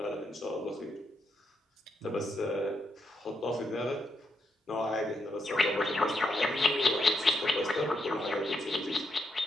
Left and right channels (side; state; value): both; normal; correlation 0.81